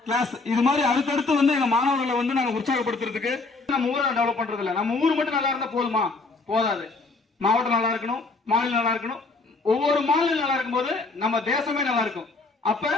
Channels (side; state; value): right; quieter; 3.7 dB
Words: கிளாஸ். இது மாதிரி அடுத்தடுத்து வந்து எங்க மாணவர்களை வந்து நாங்க உற்சாகப்படுத்துறதுக்கு நம்ம ஊரை டெவலப் பண்றது இல்ல. நம்ம ஊர் மட்டும் நல்லா இருந்தா போதுமா? போதாது. மாவட்டம் நல்லா இருக்கணும், மாநிலம் நல்லா இருக்கணும். ஒவ்வொரு மாநிலம் நல்லா இருக்கும் போது நம்ம தேசமே நல்லா இருக்கும். அப்ப